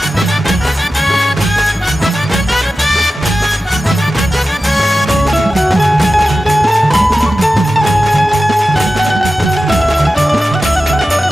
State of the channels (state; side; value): normal; both; correlation 0.93